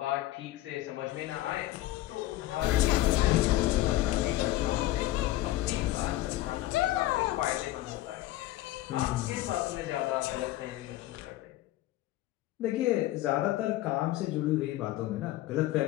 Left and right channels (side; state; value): right; quieter; 16.0 dB